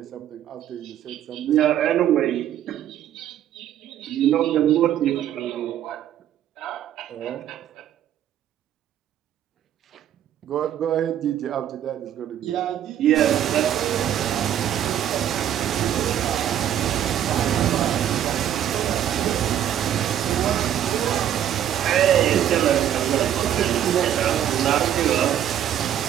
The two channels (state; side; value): quieter; left; 10.7 dB